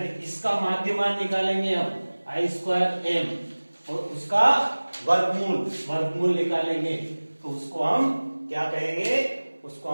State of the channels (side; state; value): both; inverted; correlation -1.00